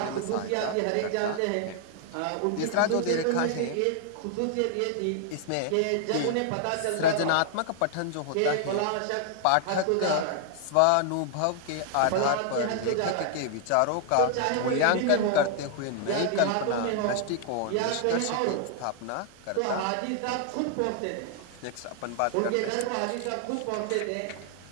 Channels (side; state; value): both; different; correlation 0.00